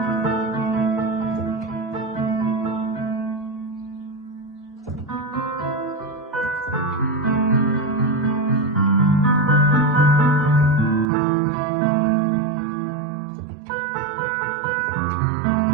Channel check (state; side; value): drops out; left; at 11.1 s